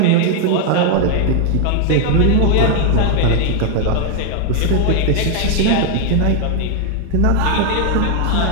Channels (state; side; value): different; both; correlation 0.00